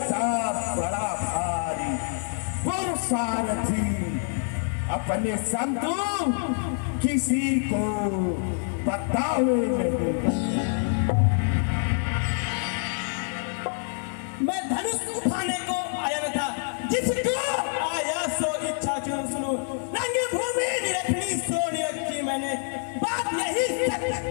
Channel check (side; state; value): right; silent; 58 dB below the other